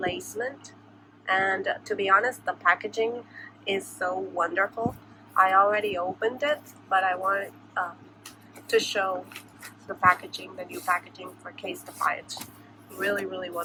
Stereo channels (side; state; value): both; identical; correlation 1.00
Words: and to be honest, the packaging is so wonderful. I already opened it, but I wanted to show the new packaging for Casetify. It's really, really